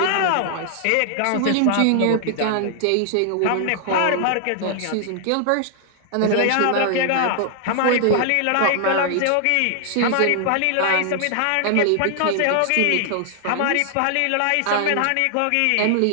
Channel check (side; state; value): both; different; correlation 0.00